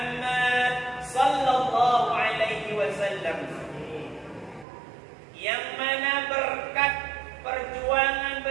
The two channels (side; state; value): left; drops out; at 4.7 s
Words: sallallahu alaihi wasallam, yang mana berkat perjuangan